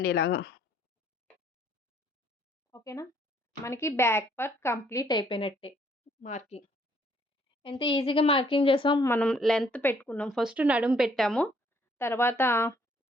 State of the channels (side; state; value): both; normal; correlation 0.65